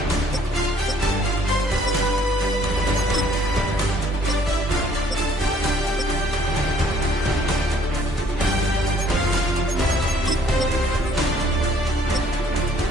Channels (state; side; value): normal; both; correlation 0.61